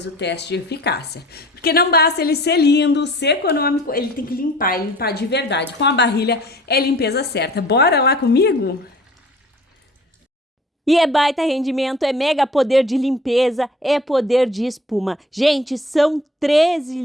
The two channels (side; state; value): both; normal; correlation 0.48